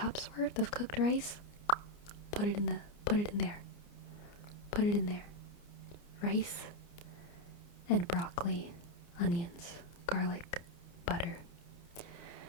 worth of cooked rice. Put it in there. Rice and broccoli, onions, garlic, butter.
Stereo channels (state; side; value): late; right; 29 ms